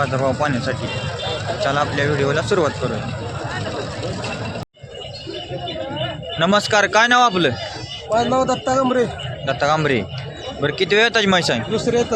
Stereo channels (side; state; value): both; identical; correlation 1.00